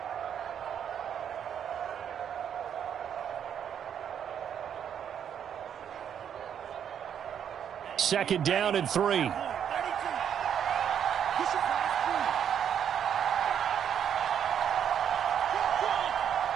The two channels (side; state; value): left; quieter; 8.7 dB